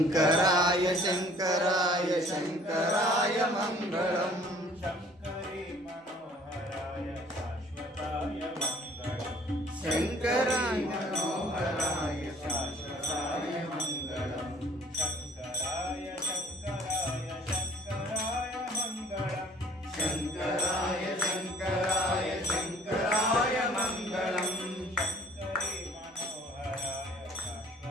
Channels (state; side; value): normal; both; correlation 0.55